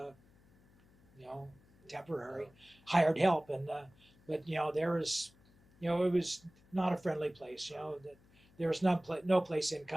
temporary hired help, and but there was, it was not a friendly place. That there was no place in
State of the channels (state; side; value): noise; left; hum, 29 dB below the sound